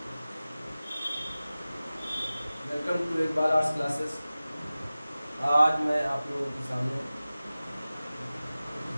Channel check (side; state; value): both; inverted; correlation -0.97